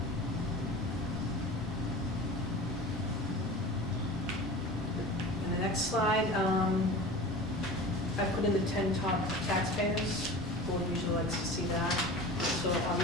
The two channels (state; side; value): normal; both; correlation 0.36